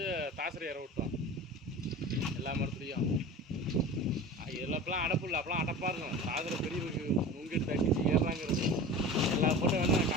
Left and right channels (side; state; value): both; normal; correlation 0.34